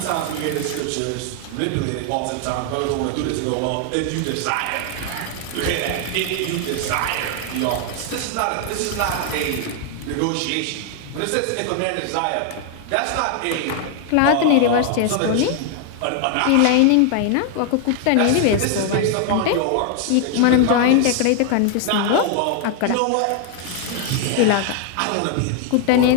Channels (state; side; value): different; both; correlation 0.00